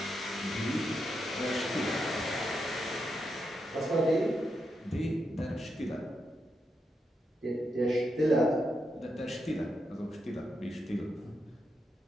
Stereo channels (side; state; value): both; normal; correlation 0.84